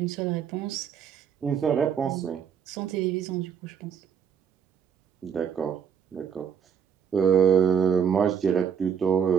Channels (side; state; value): left; quieter; 7.6 dB